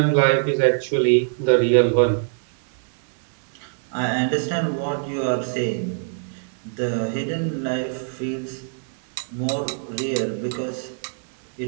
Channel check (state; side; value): silent; left; digital silence